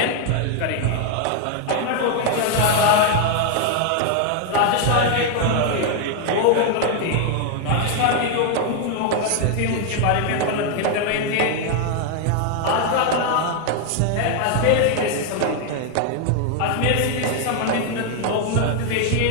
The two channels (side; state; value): both; different; correlation 0.00